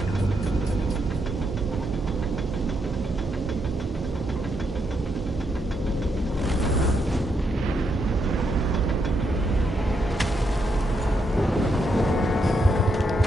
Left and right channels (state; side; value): normal; both; correlation 0.79